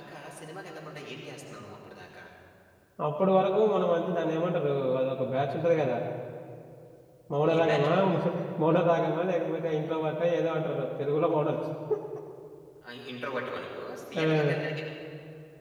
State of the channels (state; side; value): identical; both; correlation 1.00